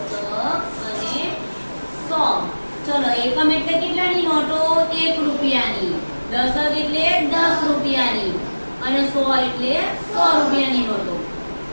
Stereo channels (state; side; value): inverted; both; correlation -1.00